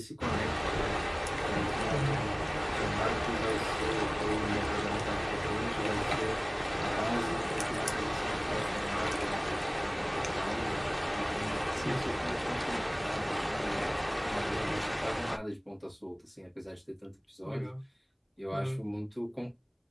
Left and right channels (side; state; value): both; identical; correlation 1.00